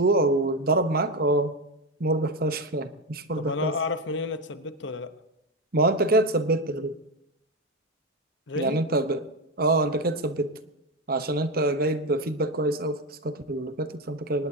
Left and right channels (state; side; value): normal; both; correlation 0.13